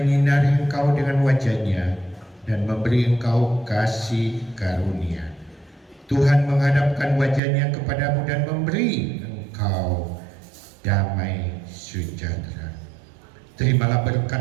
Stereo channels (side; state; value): left; drops out; at 7.4 s